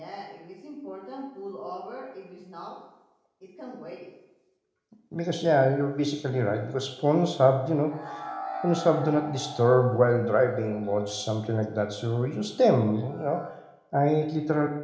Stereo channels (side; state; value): both; identical; correlation 1.00